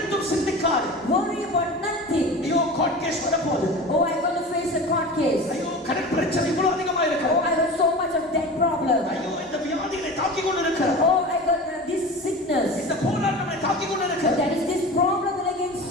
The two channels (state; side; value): normal; both; correlation 0.33